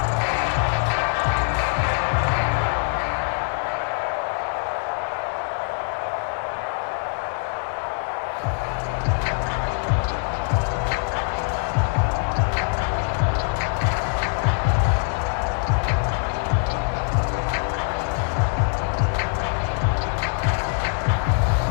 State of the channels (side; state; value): right; quieter; 39.5 dB